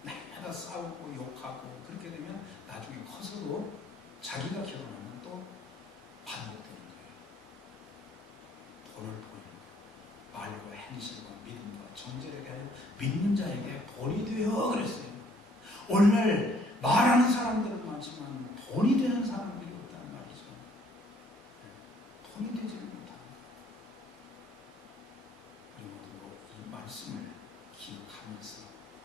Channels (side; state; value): both; normal; correlation 0.63